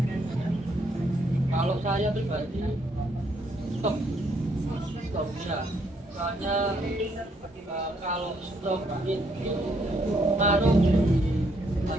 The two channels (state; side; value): normal; both; correlation 0.72